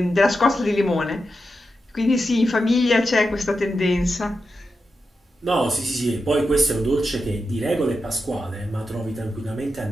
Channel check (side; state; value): both; normal; correlation 0.89